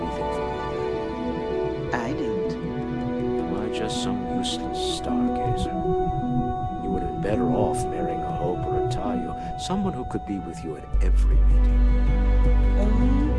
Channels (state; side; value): identical; both; correlation 1.00